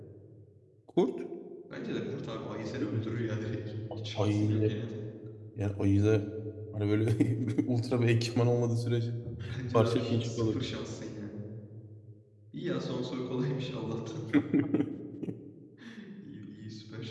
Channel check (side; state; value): both; identical; correlation 1.00